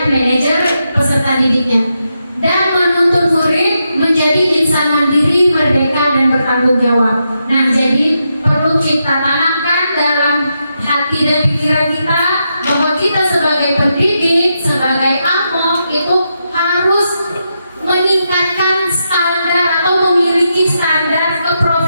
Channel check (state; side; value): inverted; both; correlation -0.84